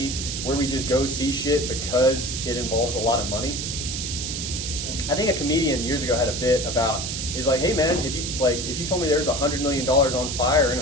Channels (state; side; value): noise; right; hiss, 4 dB below the sound